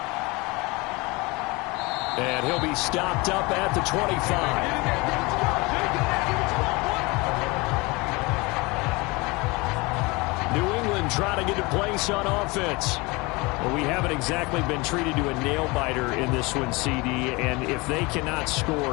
And he'll be stopped up at the 25. New England trying to get a place on offense. Well, we haven't exactly been treated to a nail-biter in this one, CD, and if they cannot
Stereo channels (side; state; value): right; quieter; 25.1 dB